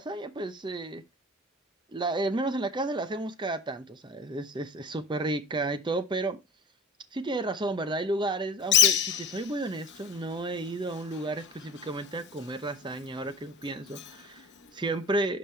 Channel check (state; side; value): normal; both; correlation 0.41